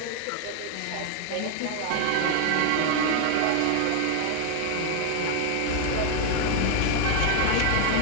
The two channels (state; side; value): different; both; correlation 0.00